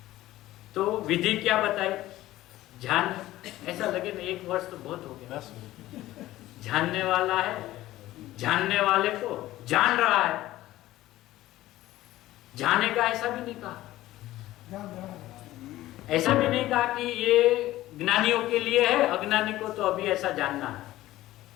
तो विधि क्या बताई? ध्यान। ऐसा लगे ना 1 वर्ष तो बहुत हो गया। जानने वाला है, जानने वाले को जान रहा है, जाने का ऐसा भी नहीं कहा। ऐसा भी नहीं कहा कि ये ज्ञानियों के लिए है, अज्ञानी को तो अभी ऐसा जानना है।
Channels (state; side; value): quieter; right; 15.8 dB